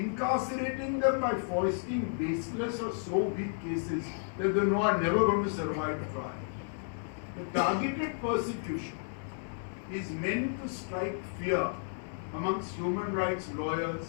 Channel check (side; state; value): right; silent; digital silence